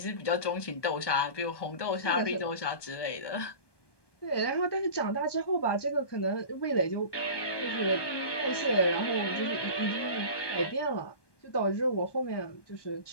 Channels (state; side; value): late; right; 1.2 ms